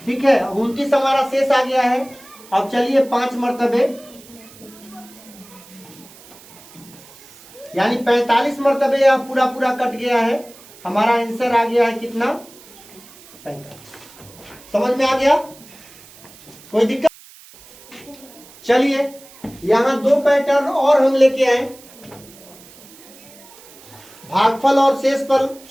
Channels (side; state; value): right; noise; hiss, 22 dB below the sound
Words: ठीक है, 29 हमारा शेष आ गया है। अब चलिए 5 मरतबे यानी 45 मरतबे यह पूरा पूरा कट गया है। हमारा आंसर आ गया है कितना? 45। समझ में आ गया? कोई दिक्कत? चलिए यहां 2 पैटर्न और हम लेके आए, भागफल और